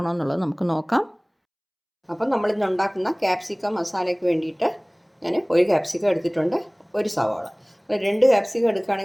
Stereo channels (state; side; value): identical; both; correlation 1.00